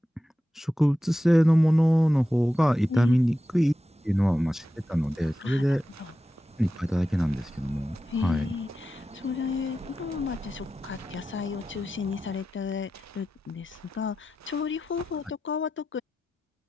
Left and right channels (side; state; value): both; normal; correlation 0.92